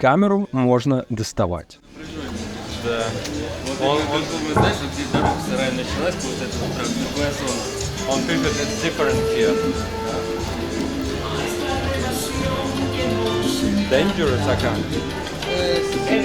можно доставать. Да. Он знаешь, где дорога сарая началась, вот это вот прям другая зона. Он пишет, it's different here. Dangerous acá.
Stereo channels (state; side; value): identical; both; correlation 1.00